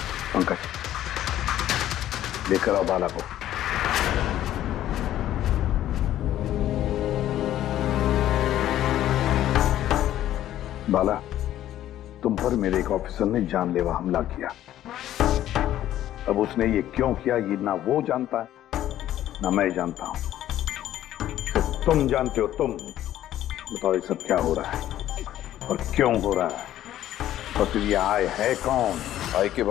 पंकज, लेकर आओ बाला को। बाला, तुम पर मेरे एक ऑफिसर ने जानलेवा हमला किया। अब उसने ये क्यों किया, ये ना वो जानता है ना मैं जानता हूं। सिर्फ तुम जानते हो। तुम बताओ ये सब क्या हो रहा है और क्यों हो रहा है, और फिर ये आय है कौन? आय के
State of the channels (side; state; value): right; quieter; 12.7 dB